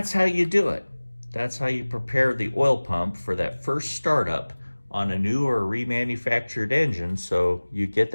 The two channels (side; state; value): both; inverted; correlation -1.00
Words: how you do it. That's how you prepare the oil pump for that first startup on a new or remanufactured engine, so you get